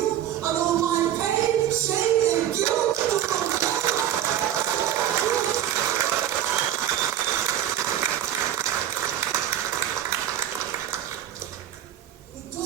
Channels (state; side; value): quieter; left; 11.3 dB